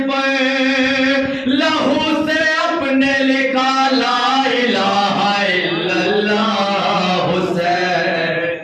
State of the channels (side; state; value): both; identical; correlation 1.00